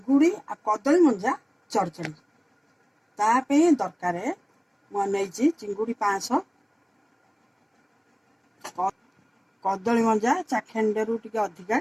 आ कदली मंजा चढ़चड़ी तापे दरकार मुझे चिंगुड़ी 500 कदली मंजा चाखेंडे रू टिके अधिका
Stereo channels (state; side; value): identical; both; correlation 1.00